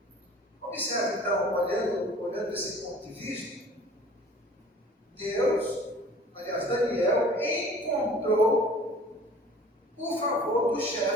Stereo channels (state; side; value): normal; both; correlation 0.48